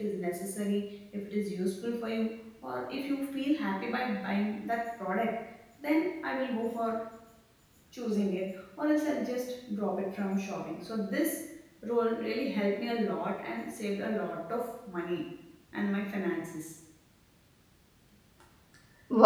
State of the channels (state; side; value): identical; both; correlation 1.00